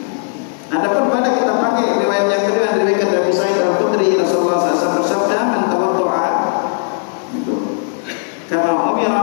Adapun pada kita pakai riwayat yang kedua dari Abu Sa'id Al-Khudri, Rasulullah SAW bersabda, "Man tawaddu'a," itu kama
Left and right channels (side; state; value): right; silent; 56 dB below the other